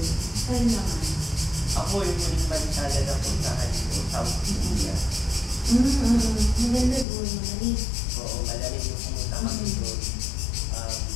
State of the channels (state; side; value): drops out; right; at 7.1 s